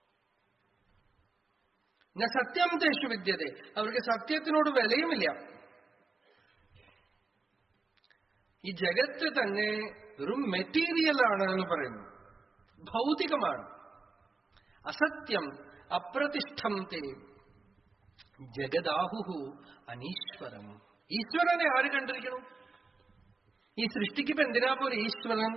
ന സത്യം തേഷു വിദ്യത്തെ, അവർക്ക് സത്യത്തിനോട് വിലയുമില്ല. ഈ ജഗത്ത് തന്നെ വെറും മെറ്റീരിയലാണ് എന്ന് പറയുന്നു, ഭൗതികമാണ്. അസത്യം അപ്രതിഷ്ഠം തേ ജഗദാഹുഹു അനീശ്വരം. ഈശ്വരനെ ആര് കണ്ടിരിക്കണം? ഈ സൃഷ്ടിക്കിപ്പോ എന്തിനാ പോലെ ഈശ്വരൻ?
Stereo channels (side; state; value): left; quieter; 4.0 dB